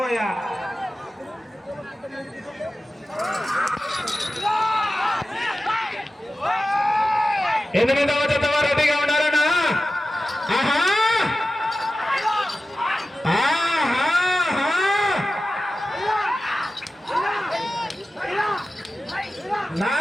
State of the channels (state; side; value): normal; both; correlation 0.94